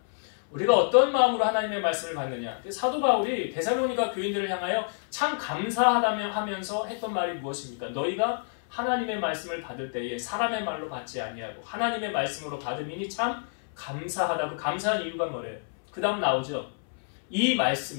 우리가 어떤 마음으로 하나님의 말씀을 받느냐. 사도 바울이 데살로니가 교인들을 향하여 참 감사하다며 하면서 했던 말이 무엇입니까? 너희가 하나님의 말씀을 받을 때에 사람의 말로 받지 아니하고 하나님의 말씀으로 받음이니 참 감사하다고. 감사한 이유가 뭐래요? 그 다음 나오죠. 이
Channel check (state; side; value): silent; right; 59 dB below the other